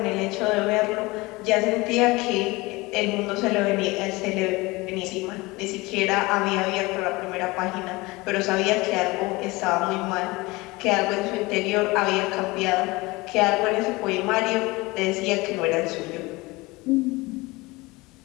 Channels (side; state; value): right; quieter; 22.5 dB